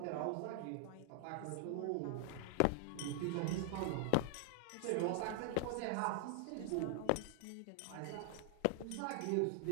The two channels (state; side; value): different; both; correlation 0.00